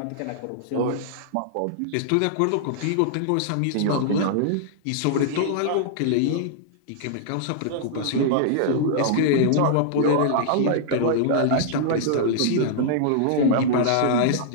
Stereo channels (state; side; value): different; both; correlation -0.01